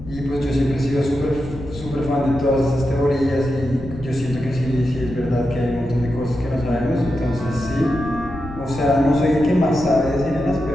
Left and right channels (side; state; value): left; noise; rumble, 13 dB below the sound